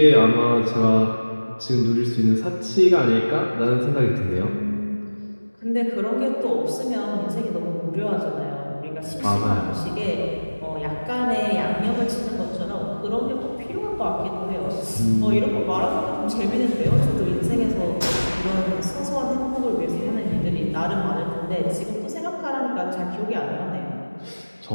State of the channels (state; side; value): inverted; both; correlation -1.00